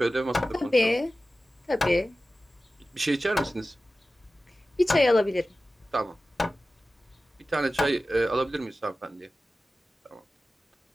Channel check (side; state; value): both; normal; correlation 0.95